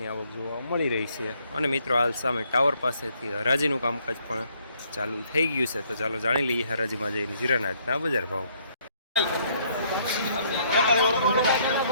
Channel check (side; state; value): both; inverted; correlation -0.68